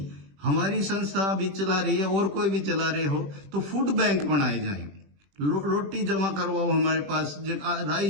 हमारी संस्था भी चला रही है और कोई भी चला रहे हो तो फूड बैंक बनाए जाए। रोटी जमा करवाओ, हमारे पास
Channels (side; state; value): left; late; 21 ms